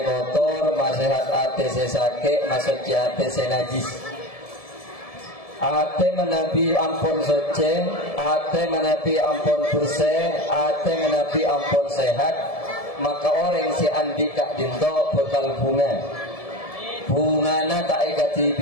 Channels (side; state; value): right; late; 1.7 ms